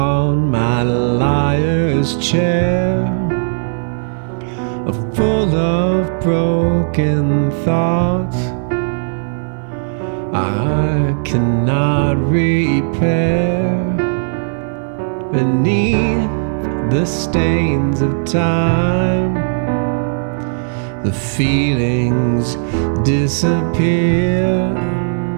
my liar's chair, full of broken thoughts I cannot repair. Beneath the stains of time, the feelings disappear.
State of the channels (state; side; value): silent; left; digital silence